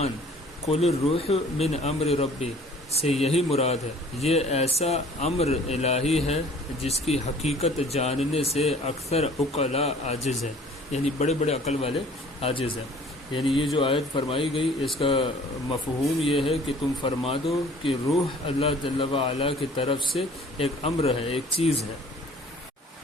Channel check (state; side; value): normal; both; correlation 0.51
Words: قل الروح من امر ربی سے یہی مراد ہے۔ یہ ایسا امر الہی ہے جس کی حقیقت جاننے سے اکثر عقلاء عاجز ہیں، یعنی بڑے بڑے عقل والے عاجز ہیں۔ یعنی یہ جو آیت فرمائی گئی اس کا مفہوم یہ ہے کہ تم فرما دو کہ روح اللہ جل وعلا کی طرف سے ایک امر ہے، ایک چیز ہے۔